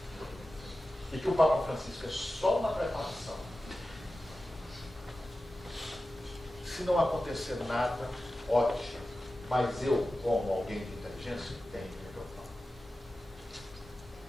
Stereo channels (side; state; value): both; normal; correlation 0.94